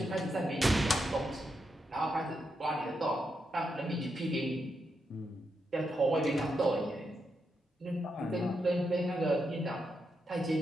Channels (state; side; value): normal; both; correlation 0.83